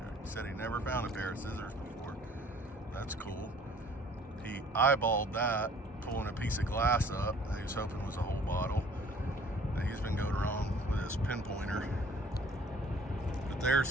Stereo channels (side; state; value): both; normal; correlation 0.54